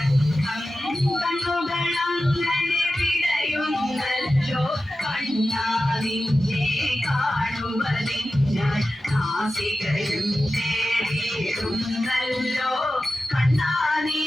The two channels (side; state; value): both; normal; correlation 0.93